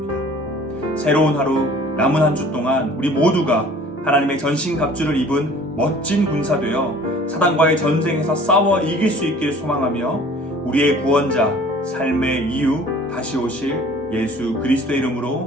새로운 하루, 남은 한 주 동안 우리 모두가 하나님의 전신갑주를 입은 멋진 군사 되어 사단과의 전쟁에서 싸워 이길 수 있길 소망하며 우리의 구원자, 삶의 이유, 다시 오실 예수 그리스도의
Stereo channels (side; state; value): both; normal; correlation 0.49